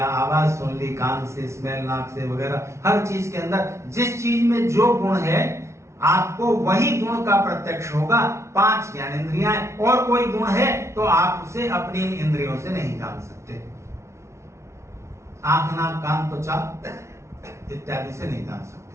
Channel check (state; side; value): late; left; 0.13 ms